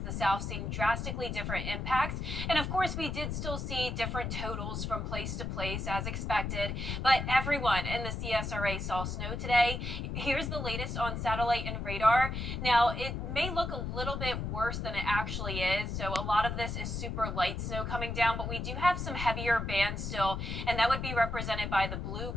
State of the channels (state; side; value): noise; left; rumble, 4 dB below the sound